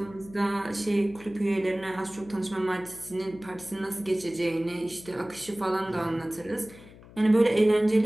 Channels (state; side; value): noise; left; hum, 20 dB below the sound